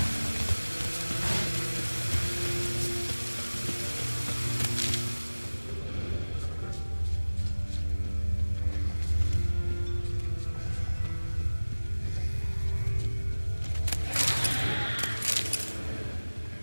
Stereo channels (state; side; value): inverted; both; correlation -1.00